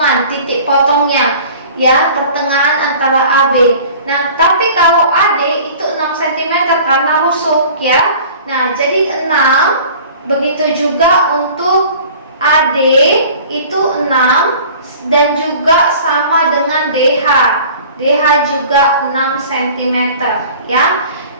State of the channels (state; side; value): inverted; both; correlation -0.45